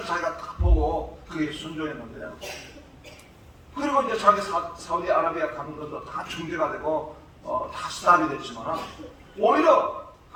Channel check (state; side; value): identical; both; correlation 1.00